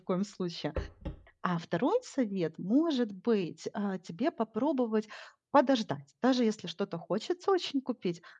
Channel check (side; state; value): both; identical; correlation 1.00